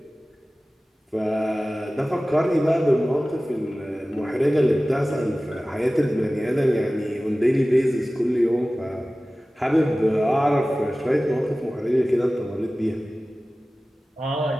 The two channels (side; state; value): both; normal; correlation 0.97